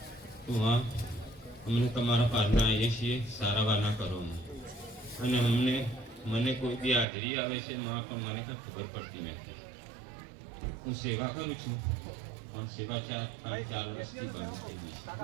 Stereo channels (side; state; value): left; drops out; at 7.1 s